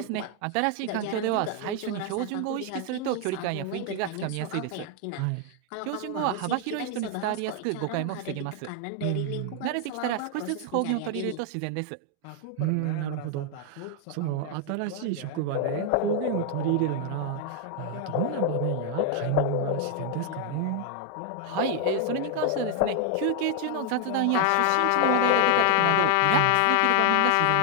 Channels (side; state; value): both; different; correlation 0.00